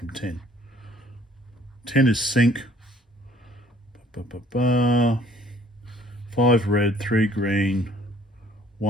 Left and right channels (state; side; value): normal; both; correlation 0.58